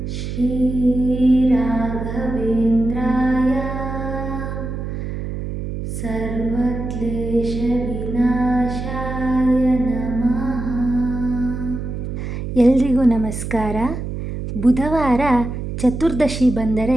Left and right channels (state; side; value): noise; right; hum, 5 dB below the sound